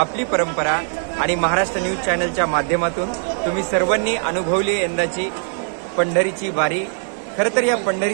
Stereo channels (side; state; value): left; silent; 65 dB below the other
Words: आपली परंपरा आणि महाराष्ट्र न्यूज चॅनलच्या माध्यमातून तुम्ही सर्वांनी अनुभवली यंदाची पंढरीची वारी। खरं तर या